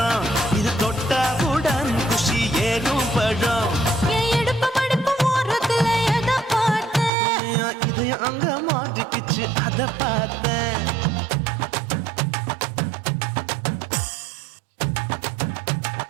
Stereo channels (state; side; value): drops out; left; at 7.1 s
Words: இது தொட்டவுடன் குஷி ஏறும் பழம். என் இடுப்பு மடுப்பு ஓரத்துல எதை பார்த்தேன்? என் இதயம் அங்க மாட்டிக்கிச்சு அத பார்த்தேன்.